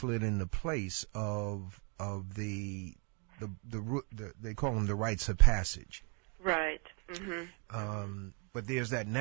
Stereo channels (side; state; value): left; quieter; 33.6 dB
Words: into place of the they call them the rites of passage. Right. Mm-hmm. But there's that